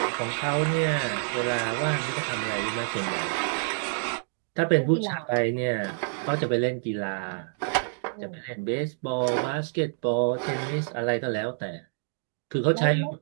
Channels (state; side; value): silent; left; digital silence